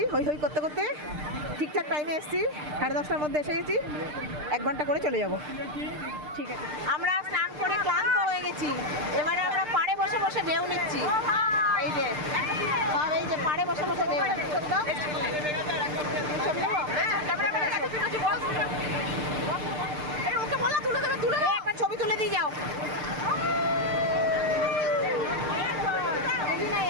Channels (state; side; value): late; left; 6.7 ms